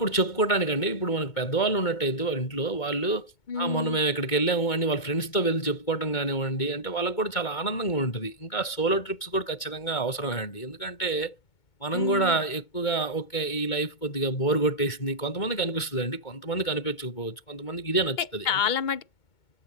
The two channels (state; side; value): late; right; 2.2 ms